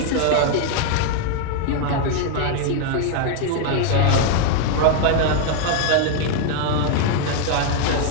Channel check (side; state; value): both; different; correlation 0.00